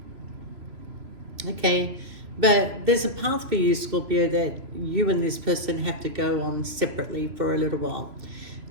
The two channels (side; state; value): left; late; 3.0 ms